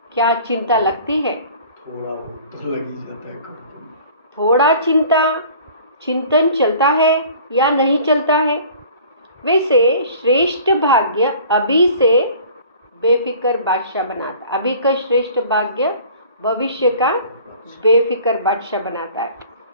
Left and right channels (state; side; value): inverted; both; correlation -0.48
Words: क्या चिंता लगती है? थोड़ा बहुत तो लग ही जाता है। थोड़ा चिंतन चलता है या नहीं चलता है। वैसे श्रेष्ठ भाग्य अभी से बेफिक्र बादशाह बनाता। अभी का श्रेष्ठ भाग्य भविष्य का बेफिक्र बादशाह बनाता है।